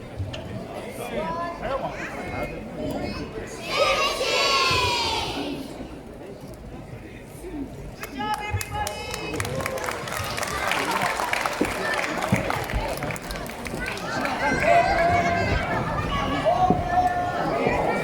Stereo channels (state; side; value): identical; both; correlation 1.00